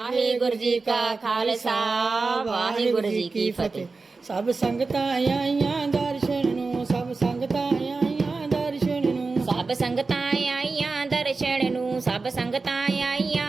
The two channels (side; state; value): left; quieter; 4.0 dB